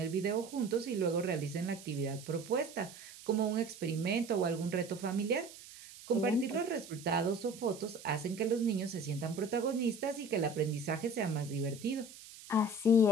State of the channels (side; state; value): right; noise; hiss, 17 dB below the sound